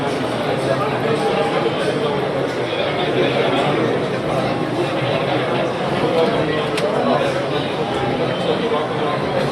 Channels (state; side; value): identical; both; correlation 1.00